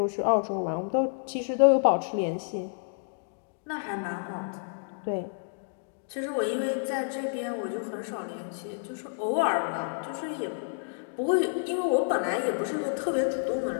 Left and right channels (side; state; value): right; silent; digital silence